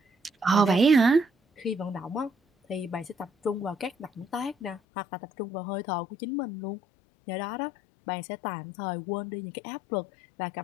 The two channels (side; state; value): right; drops out; at 4.8 s